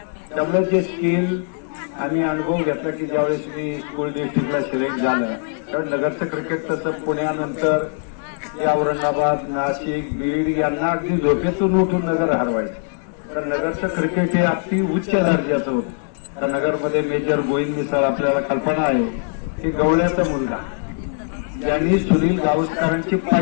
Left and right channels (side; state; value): right; silent; 58 dB below the other